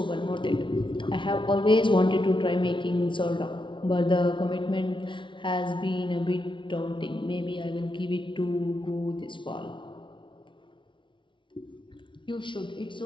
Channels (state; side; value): late; right; 0.24 ms